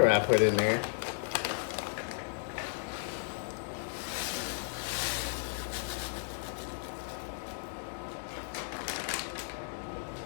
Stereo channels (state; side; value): silent; right; 55 dB below the other